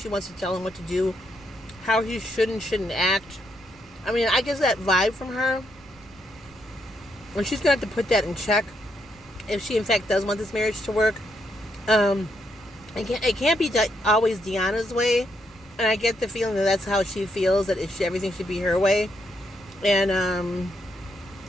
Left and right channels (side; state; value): right; noise; rumble, 26 dB below the sound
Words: wants to tell him what to do, how he should and shouldn't act. I get that vibe from her. And she's going to have to put that in check if she, in fact, does want this marriage to work. It can't be always Deanna's way. And I get the feeling that that's how she feels, that everything should be her way. And